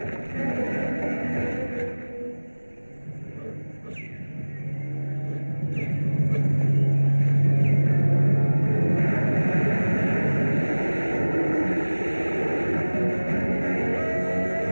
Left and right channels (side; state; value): both; inverted; correlation -1.00